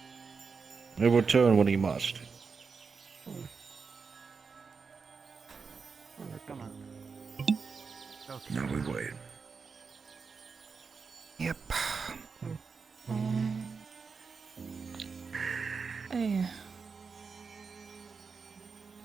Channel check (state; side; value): quieter; left; 5.2 dB